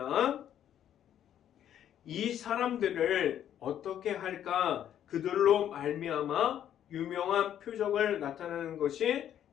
이 사람들을 어떻게 할까 그들로 말미암아 유명한 표적을 나타내는 것이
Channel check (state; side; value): quieter; right; 10.4 dB